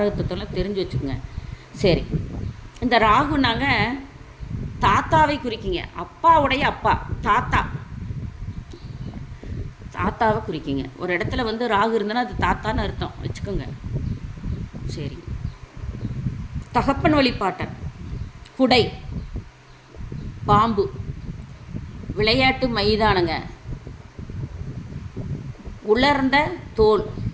தத்துவம்லாம் தெரிஞ்சு வச்சுக்கோங்க. சரி, இந்த ராகுனாங்க தாத்தாவை குறிக்கிங்க. அப்பாவுடைய அப்பா தாத்தாவை குறிக்கிங்க. ஒரு இடத்துல வந்து ராகு இருந்தனா அது தாத்தான்னு அர்த்தம் வச்சுக்கோங்க. சரி, தகப்பன் வழிபாட்டன், குடை, பாம்பு, விளையாட்டு மைதானங்க, உலர்ந்த தோல்,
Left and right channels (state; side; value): identical; both; correlation 1.00